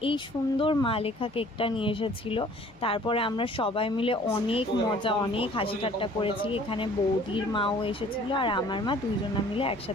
এই সুন্দর মা লেখা কেকটা নিয়ে এসেছিলো। তারপরে আমরা সবাই মিলে অনেক মজা, অনেক হাসি ঠাট্টা করেছি। এখানে বৌদির মাও এসেছিলো, আর আমার মা, দুইজন মিলে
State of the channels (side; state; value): left; noise; hum, 27 dB below the sound